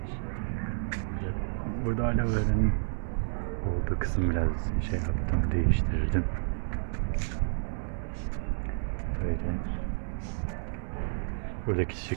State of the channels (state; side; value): silent; left; digital silence